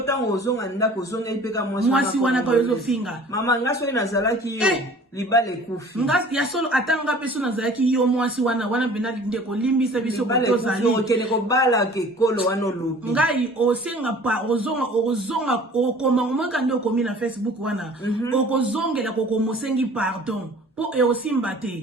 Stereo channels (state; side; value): normal; both; correlation 0.48